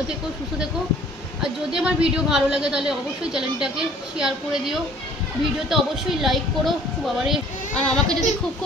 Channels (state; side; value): normal; both; correlation 0.54